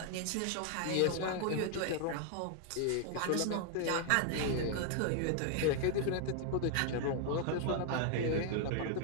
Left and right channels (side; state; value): both; different; correlation 0.00